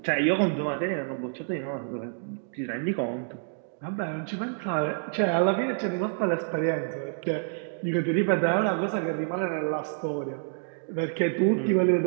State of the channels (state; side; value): silent; left; digital silence